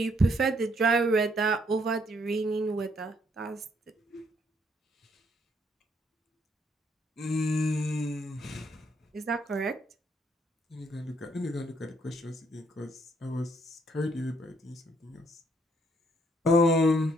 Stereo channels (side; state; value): both; normal; correlation 0.69